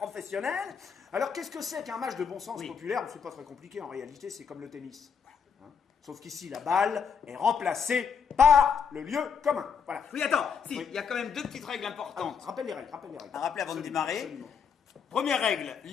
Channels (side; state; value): right; quieter; 6.7 dB